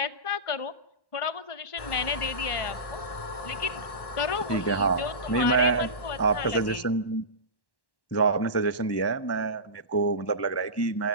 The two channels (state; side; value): late; right; 1.1 ms